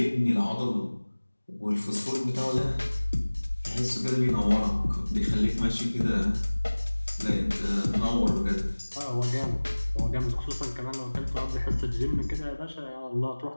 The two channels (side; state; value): both; inverted; correlation -1.00